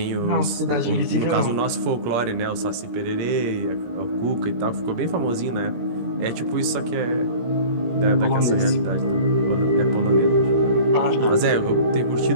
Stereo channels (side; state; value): left; late; 17 ms